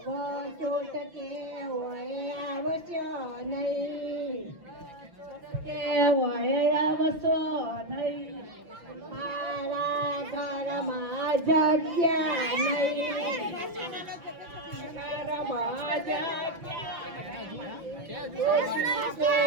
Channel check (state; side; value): late; left; 5.9 ms